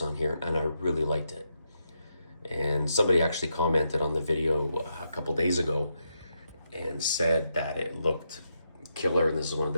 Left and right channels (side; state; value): both; inverted; correlation -0.82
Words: on here, and I really liked it. And somebody actually commented on the video a couple days ago and said that it looked killer, and this is one of